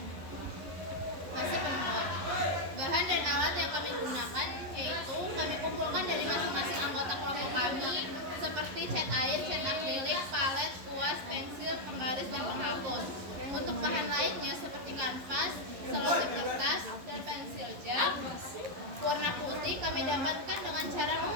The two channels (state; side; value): late; left; 11 ms